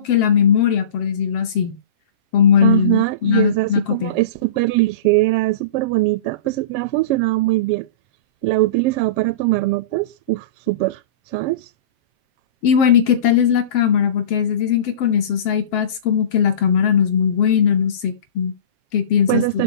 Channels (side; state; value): right; late; 7.5 ms